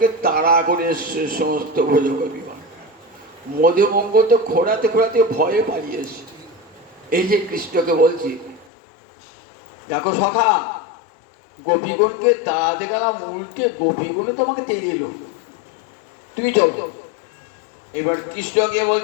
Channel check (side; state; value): right; drops out; at 8.7 s